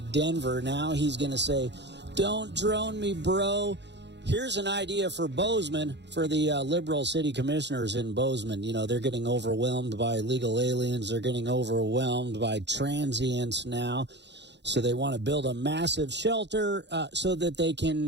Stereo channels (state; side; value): late; left; 0.51 ms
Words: Denver, now he's going to say, don't drone me, bro. Here's an idea for Bozeman, for the liberal city commissioners in Bozeman. You know, they're getting overwhelmed by illegal aliens. They're getting overwhelmed by transients now. So they want to build a massive shelter so that they